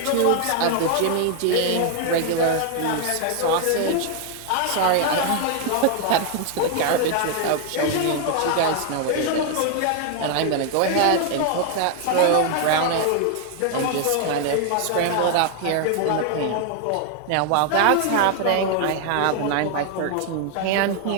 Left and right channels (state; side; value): different; both; correlation 0.00